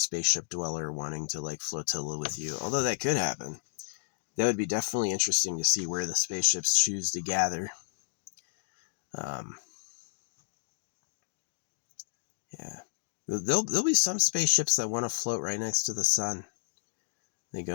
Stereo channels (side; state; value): right; silent; digital silence